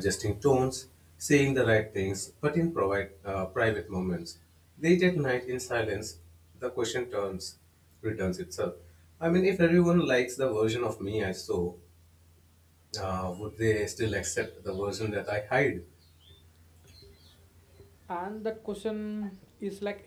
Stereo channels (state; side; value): identical; both; correlation 1.00